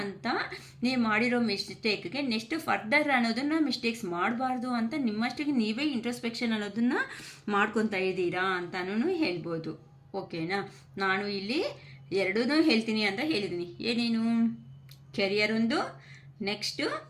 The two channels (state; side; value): identical; both; correlation 1.00